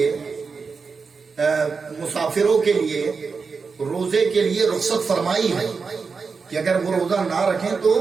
مسافروں کے لیے روزے کے لیے رخصت فرمائی ہے کہ اگر وہ روزہ نہ رکھیں تو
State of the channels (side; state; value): left; quieter; 5.0 dB